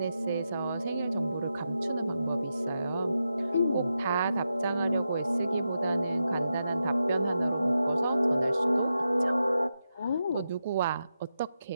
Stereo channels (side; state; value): both; inverted; correlation -0.87